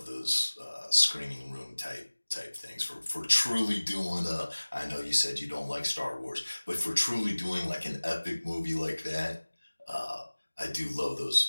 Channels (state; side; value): inverted; both; correlation -1.00